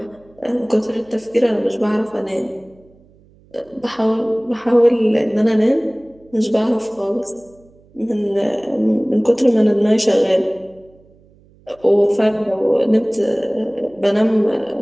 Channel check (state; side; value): noise; right; hum, 29 dB below the sound